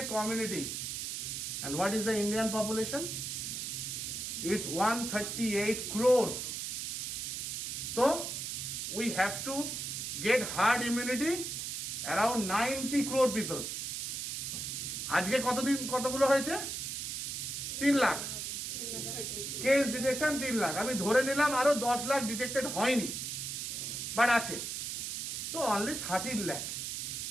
a community. And what is the Indian population? It's 138 crore. So we have to get herd immunity around 90 crore people. আজকে কতগুলো হয়েছে? 3 লাখ। Case detection 3 lakh. আমি ধরে নিলাম আরো 10 লাখ ডিটেক্টেড হয়নি, বাট আছে, তো অনলি 13 লাখ।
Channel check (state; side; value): noise; right; hiss, 4 dB below the sound